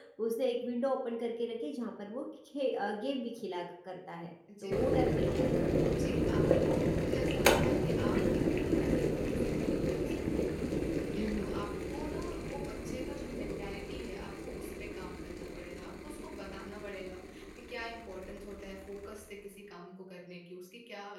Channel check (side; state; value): both; identical; correlation 1.00